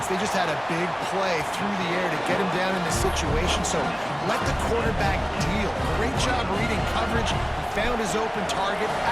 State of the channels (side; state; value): both; identical; correlation 1.00